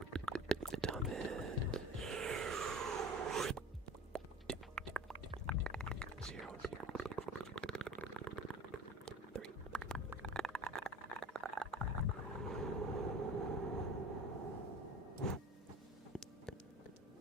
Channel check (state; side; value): normal; both; correlation 0.38